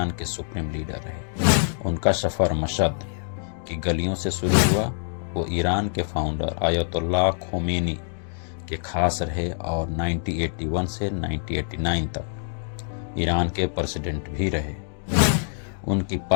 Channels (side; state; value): right; silent; digital silence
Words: के सुप्रीम लीडर रहे। उनका सफर मशहद की गलियों से शुरू हुआ। वो ईरान के फाउंडर आयतुल्लाह खोमेनी के खास रहे और 1981 से 1989 तक ईरान के प्रेसिडेंट भी रहे। उनकी